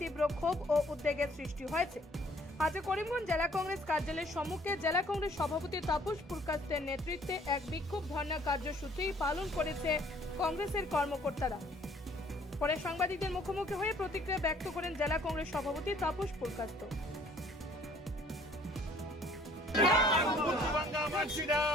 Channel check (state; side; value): normal; both; correlation 0.58